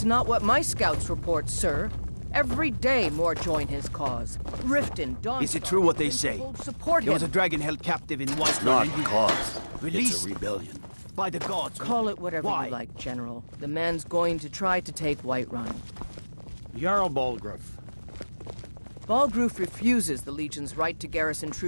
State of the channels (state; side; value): inverted; both; correlation -1.00